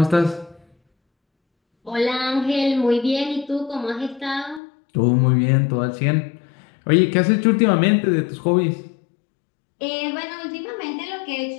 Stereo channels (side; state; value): right; drops out; at 4.6 s